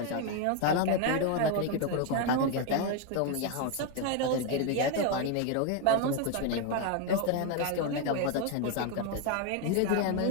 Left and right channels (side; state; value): both; different; correlation 0.01